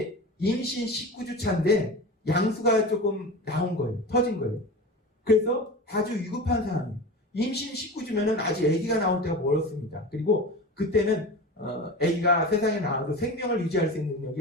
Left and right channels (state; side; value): normal; both; correlation 0.30